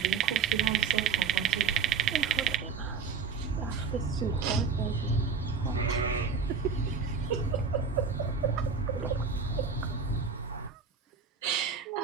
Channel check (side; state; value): left; quieter; 5.7 dB